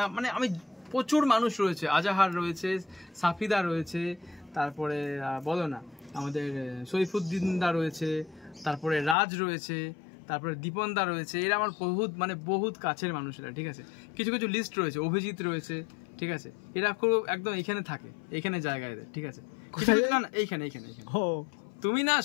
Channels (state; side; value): drops out; right; at 9.2 s